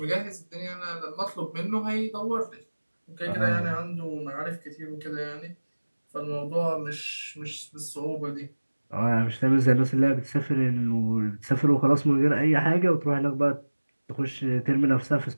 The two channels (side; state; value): both; inverted; correlation -1.00